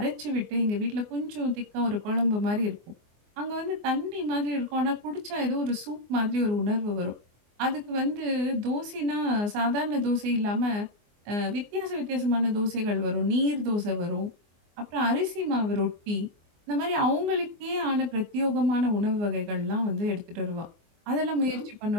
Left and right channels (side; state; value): left; late; 24 ms